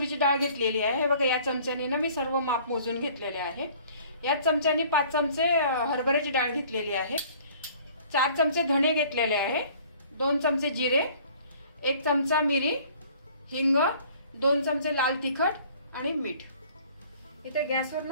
डाळ घेतलेली आहे। हे बघा, या चमच्याने ना मी सर्व माप मोजून घेतलेले आहे। याच चमच्याने 5 चमचे हरभऱ्याची डाळ घेतलेली आहे। 4 चमचे धणे घेतलेले आहे। 2 चमचे जिरे, 1 चमचा मिरी, हिंग, 2 चमचे लाल तिखट आणि मीठ। इथे गॅसवर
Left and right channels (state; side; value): inverted; both; correlation -0.53